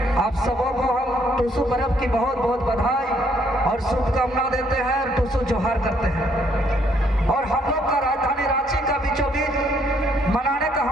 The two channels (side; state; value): both; normal; correlation 0.68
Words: आप सबों को हम टूसू पर्व की बहुत बहुत बधाई और शुभकामना देते हैं और टूसू जोहार करते हैं। और हम लोग का राजधानी रांची का बीचों बीच मनाने का